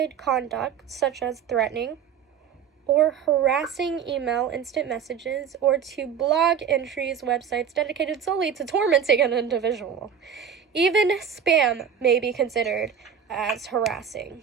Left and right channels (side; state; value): left; quieter; 7.6 dB